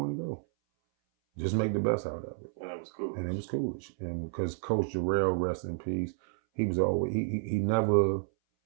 to go. Just make the best out of it. And it was cool. And it was Coolidge. And because Coach Jarrell, rest in peace, he was always, he never,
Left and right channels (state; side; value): silent; left; 57 dB below the other